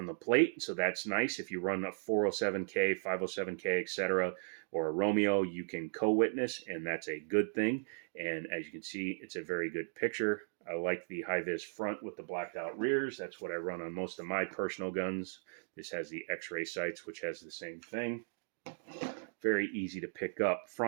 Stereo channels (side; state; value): left; silent; digital silence